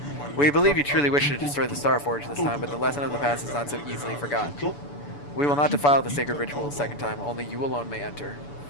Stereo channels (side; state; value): right; late; 6.9 ms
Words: We believe you truly wish to destroy the Star Forge this time, but the lesson of the past is not so easily forgotten. We will not defile the sacred ritual a second time. Only you alone may enter.